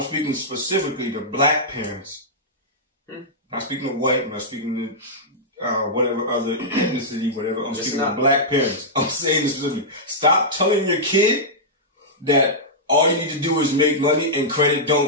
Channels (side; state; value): both; normal; correlation -0.11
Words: speaking specifically to black parents. Not speaking to white, I'm not speaking to whatever other ethnicity, whatever. I'm speaking to black parents. I'm saying this specifically. Stop telling your kid that all you need to do is make money and credit